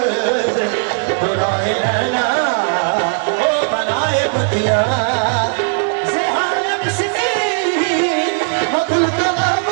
बुराए नैना ओ बनाए बतिया से हाल मिसकी अकुल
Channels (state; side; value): silent; left; digital silence